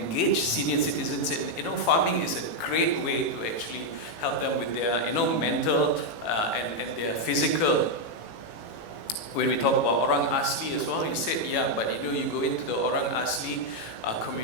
senior citizens. And, farming is a great way to actually help them with their, mental and their physical. When we talk about Orang Asli as well, he said, yeah, but you go into the Orang Asli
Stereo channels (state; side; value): late; right; 18 ms